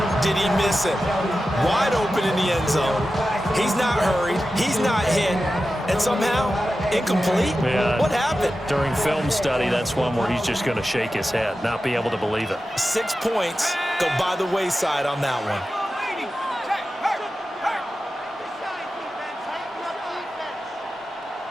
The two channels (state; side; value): normal; both; correlation 0.93